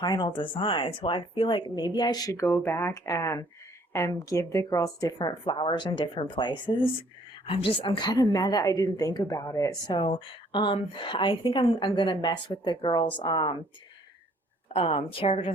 design, so I feel like maybe I should go back and give the girls different flowers in different places. I'm kind of mad that I didn't think about it. So, I think I'm gonna mess with the girls' character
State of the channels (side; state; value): both; normal; correlation 0.61